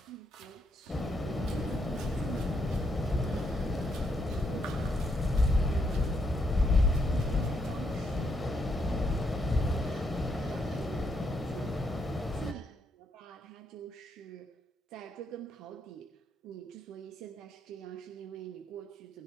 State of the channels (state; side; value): normal; both; correlation 0.77